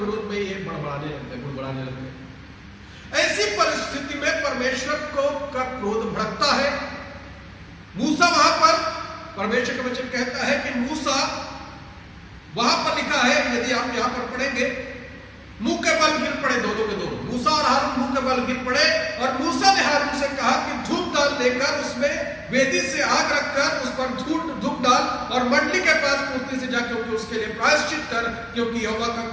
में ये बुड़बड़ाने लगते। ऐसी परिस्थिति में परमेश्वर का क्रोध भड़कता है। मूसा वहां पर, परमेश्वर का वचन कहता है कि मूसा, वहां पर लिखा है, यदि आप यहां पर पढ़ेंगे, मुंह के बल गिर पड़े दोनों के दोनों, मूसा और हारून मुंह के बल गिर पड़े। और मूसा ने हारून से कहा कि धूप डाल लेकर उसमें वेदी से आग रखकर उस पर धूप डाल और मंडली के पास पूर्ति से जाकर उसके लिए प्रायश्चित कर, क्योंकि यहोवा का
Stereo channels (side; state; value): both; identical; correlation 1.00